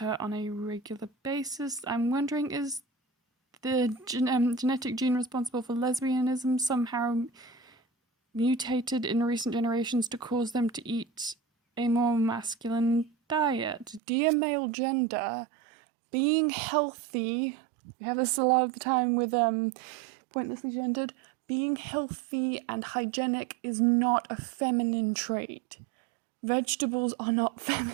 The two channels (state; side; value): drops out; left; at 14.0 s